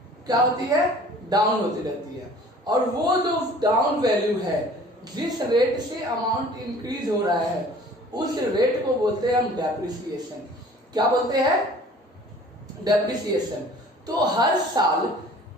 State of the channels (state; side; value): normal; both; correlation 0.49